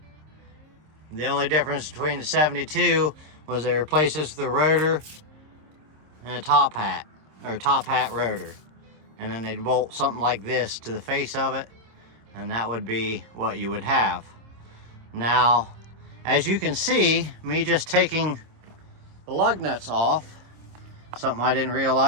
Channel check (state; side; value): late; left; 26 ms